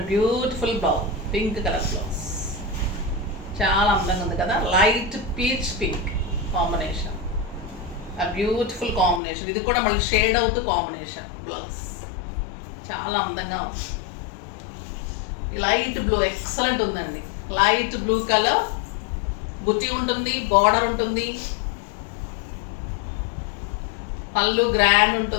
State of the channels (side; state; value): right; drops out; at 9.2 s